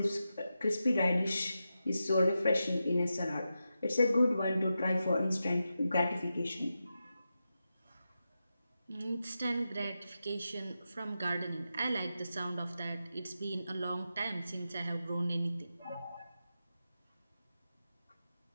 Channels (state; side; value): inverted; both; correlation -0.89